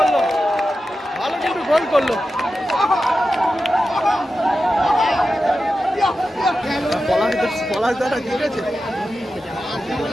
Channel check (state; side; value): normal; both; correlation 0.91